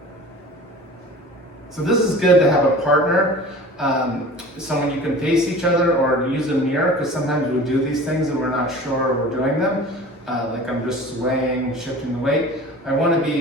So this is good to have a partner, someone you can face each other or use a mirror, because sometimes we do these things and we're not sure we're doing them. Like I'm just swaying, shifting the weight. I want to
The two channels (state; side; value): normal; both; correlation 0.41